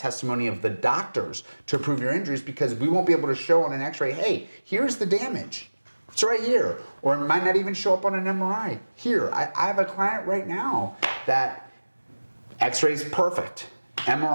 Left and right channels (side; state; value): both; inverted; correlation -1.00